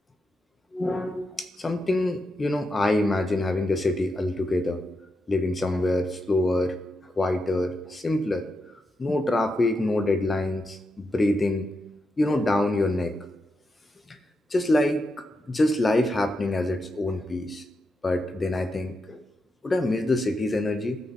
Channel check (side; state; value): both; normal; correlation 0.86